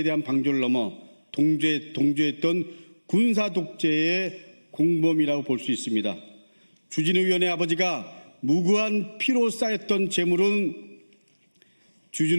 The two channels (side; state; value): both; inverted; correlation -1.00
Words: 대한 방조를 넘어 동조했던 군사 독재의 공범이라고 볼 수 있습니다. 주진우 의원의 아버지가 무고한 피로 쌓였던 재물은